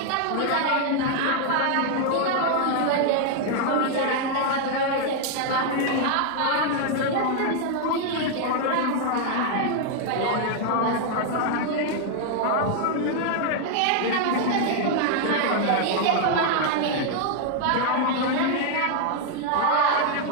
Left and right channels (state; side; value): different; both; correlation 0.00